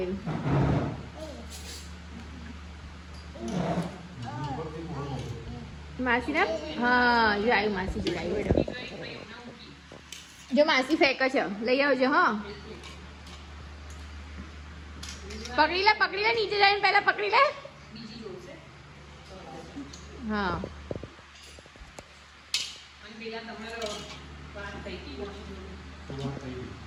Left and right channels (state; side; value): identical; both; correlation 1.00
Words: માસી ના હા જોડાયું. માસી જોડાયું. બેડો જો માસી ફેંકે છે. લઈ આવજો. હા પકડી લે પકડી લે. નીચે જઈને પહેલા પકડી લે. હા